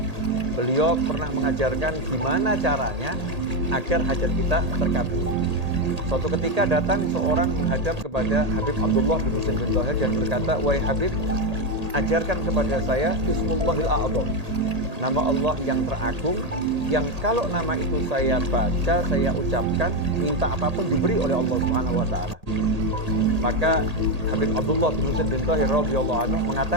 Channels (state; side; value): late; left; 1.8 ms